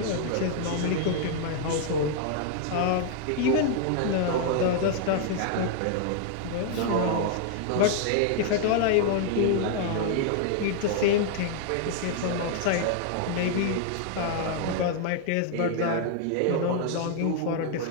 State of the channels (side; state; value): both; different; correlation 0.00